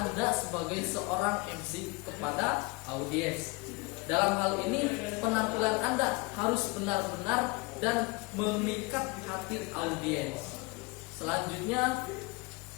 sebagai seorang MC kepada audiens. Dalam hal ini, penampilan Anda harus benar-benar dan memikat hati audiens. Selanjutnya,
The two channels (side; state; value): right; quieter; 26.8 dB